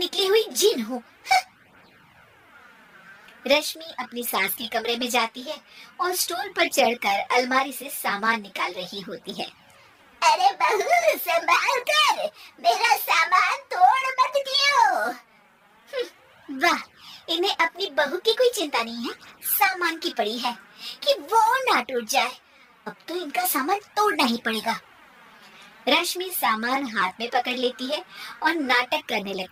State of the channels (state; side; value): identical; both; correlation 1.00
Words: हुई जिन हूँ। रश्मि अपनी सास के कमरे में जाती है और स्टूल पर चढ़कर अलमारी से सामान निकाल रही होती है। अरे बहू, संभाल कर, मेरा सामान तोड़ मत दियो। वाह, इन्हें अपनी बहू की कोई चिंता नहीं है, सामान की पड़ी है कि वो ना टूट जाए। अब तो इनका सामान तोड़ना ही पड़ेगा। रश्मि सामान हाथ में पकड़ लेती है और नाटक करने